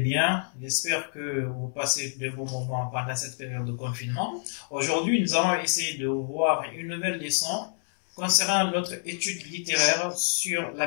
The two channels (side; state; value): right; silent; 60 dB below the other